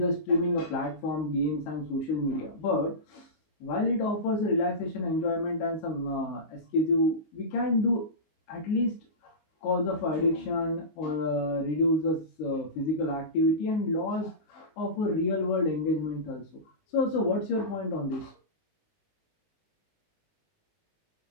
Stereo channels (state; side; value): late; right; 19 ms